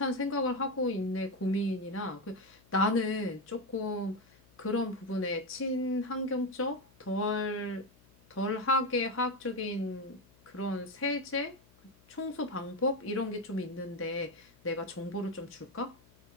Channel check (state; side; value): noise; left; hum, 28 dB below the sound